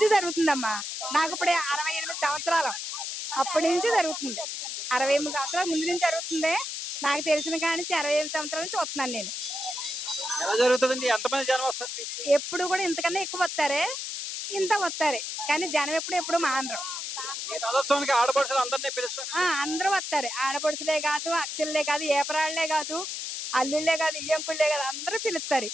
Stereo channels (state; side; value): noise; left; hiss, 5 dB below the sound